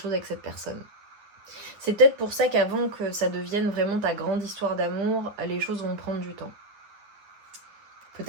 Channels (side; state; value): left; late; 10 ms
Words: avec cette personne. C'est peut-être pour ça qu'avant que ça devienne vraiment ta grande histoire d'amour, les choses vont prendre du temps.